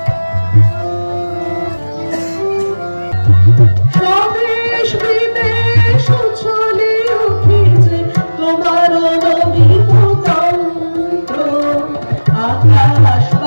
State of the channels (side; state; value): both; inverted; correlation -1.00